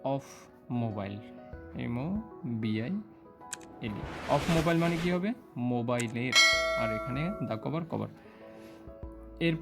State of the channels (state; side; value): identical; both; correlation 1.00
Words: of mobile, MOBILE। Of mobile মানে কি হবে? মোবাইলের, আর এখানে দা কভার, কভার।